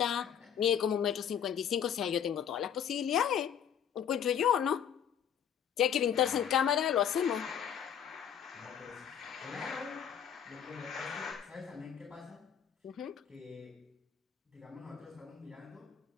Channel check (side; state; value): right; quieter; 8.7 dB